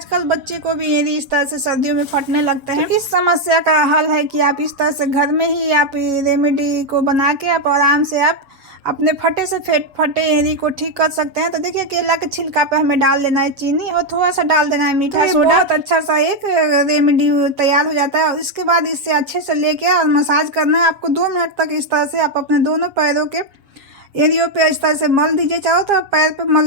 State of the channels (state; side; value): late; left; 7.3 ms